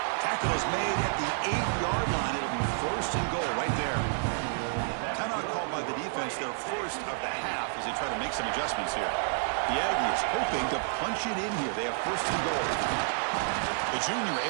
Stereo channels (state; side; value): silent; left; 58 dB below the other